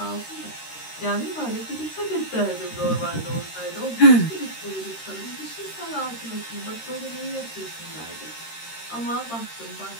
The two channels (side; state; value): right; late; 13 ms